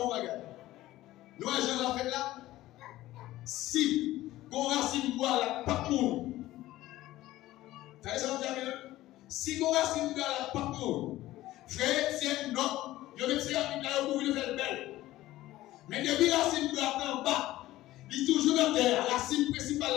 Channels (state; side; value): quieter; right; 16.0 dB